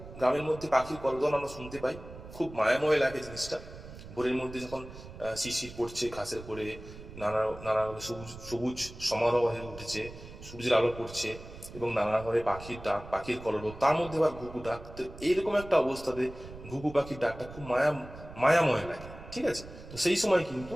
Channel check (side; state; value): right; noise; rumble, 15 dB below the sound